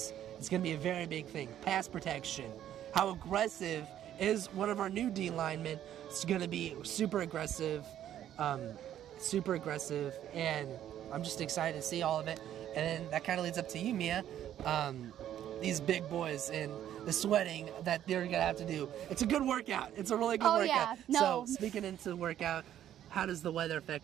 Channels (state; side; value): quieter; left; 11.2 dB